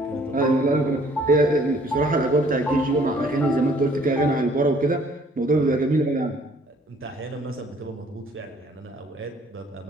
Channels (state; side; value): normal; both; correlation 0.59